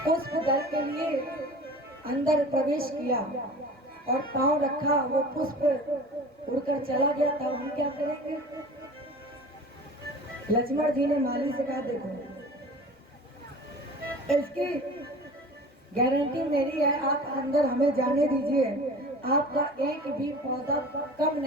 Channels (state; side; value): normal; both; correlation 0.40